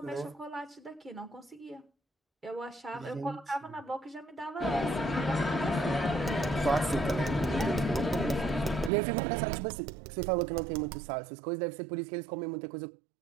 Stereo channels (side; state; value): left; drops out; at 8.9 s